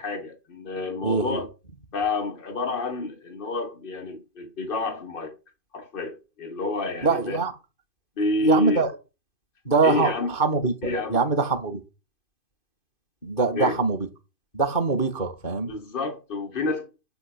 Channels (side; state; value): right; late; 2.5 ms